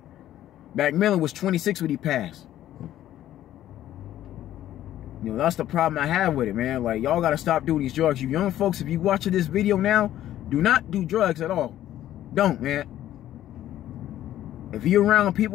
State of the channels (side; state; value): right; quieter; 12.7 dB